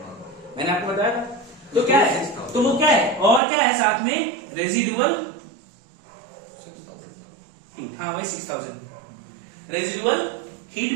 मैंने आपको बताया था। तो क्या है? तो वो क्या है? और क्या है साथ में? Residual heat. हाँ, वही 6000 रेजिडुअल हीट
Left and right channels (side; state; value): left; drops out; at 3.4 s